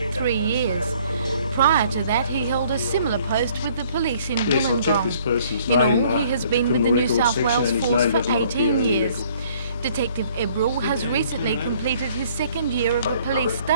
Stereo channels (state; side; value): inverted; both; correlation -0.60